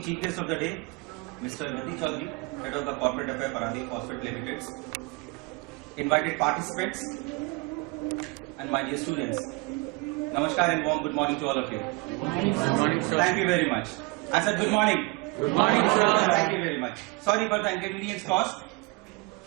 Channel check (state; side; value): quieter; left; 26.8 dB